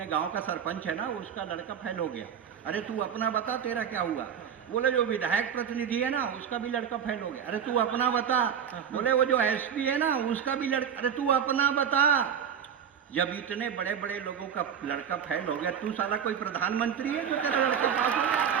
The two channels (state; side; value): quieter; left; 8.1 dB